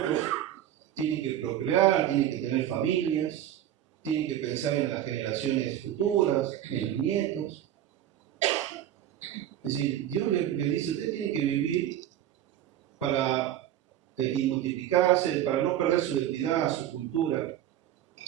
tienen que procrear, tienen que tener familias, tienen que pensar en las generaciones futuras, en los nietos. Es decir, Dios le dice, ustedes tienen que vivir para y multiplicarse, para no perder su identidad, su cultura.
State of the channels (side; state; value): left; quieter; 11.8 dB